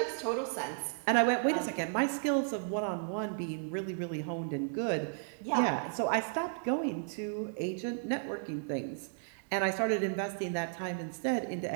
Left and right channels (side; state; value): left; silent; digital silence